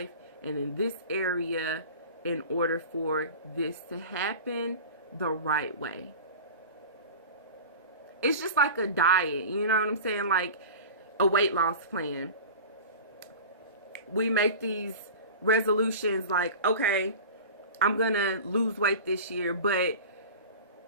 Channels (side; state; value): both; inverted; correlation -0.35